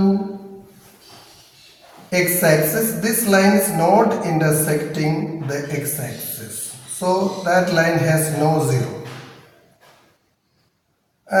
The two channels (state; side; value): identical; both; correlation 1.00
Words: x-axis. This line is not intersecting the x-axis. So that line has no 0.